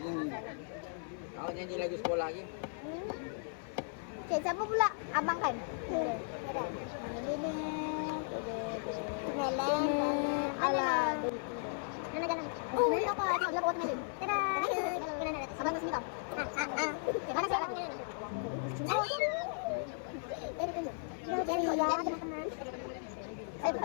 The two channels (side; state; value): right; silent; 54 dB below the other